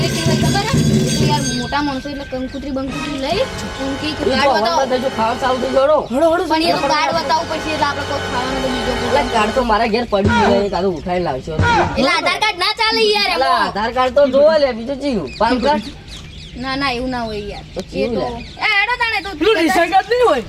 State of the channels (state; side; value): identical; both; correlation 1.00